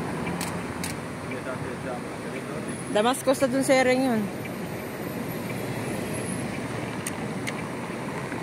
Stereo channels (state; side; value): identical; both; correlation 1.00